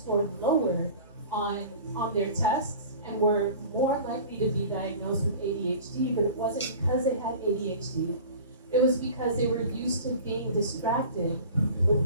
lower on their tests and were more likely to be diagnosed with ADHD, but it wasn't because they had ADHD. It was because they were used to being distracted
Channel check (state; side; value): inverted; both; correlation -0.40